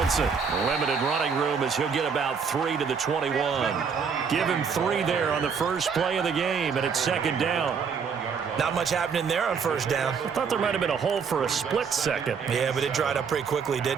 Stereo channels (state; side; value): quieter; left; 6.1 dB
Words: limited running room as he'll get about 3 to the 21. Give him 3 there on the first play of the game, and it's second down. Not much happening there on first down. I thought there might have been a hole for a split second. Yeah, but it dried up pretty quickly,